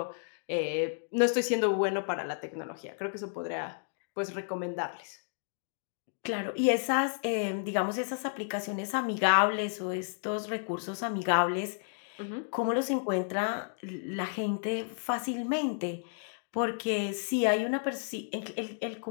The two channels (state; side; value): silent; right; digital silence